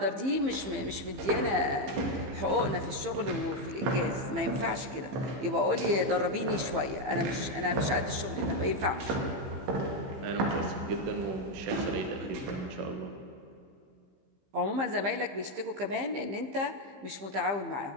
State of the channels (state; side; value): late; left; 15 ms